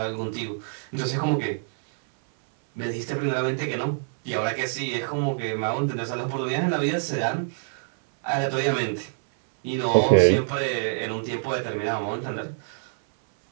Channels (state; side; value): silent; left; 61 dB below the other